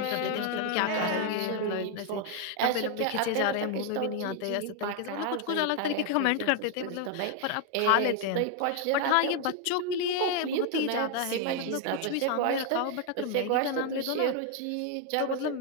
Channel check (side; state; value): both; different; correlation 0.01